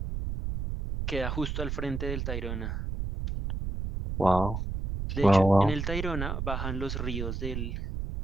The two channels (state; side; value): noise; right; rumble, 3 dB below the sound